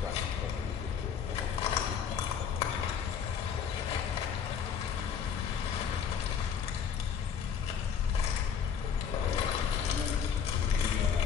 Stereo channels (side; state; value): right; quieter; 7.4 dB